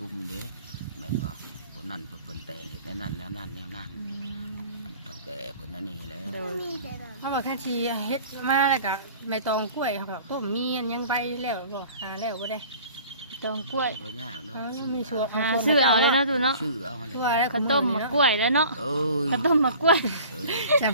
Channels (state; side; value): inverted; both; correlation -0.46